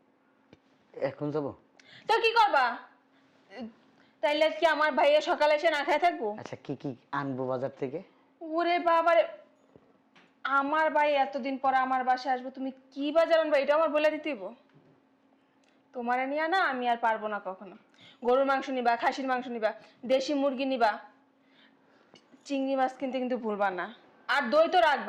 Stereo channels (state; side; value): identical; both; correlation 1.00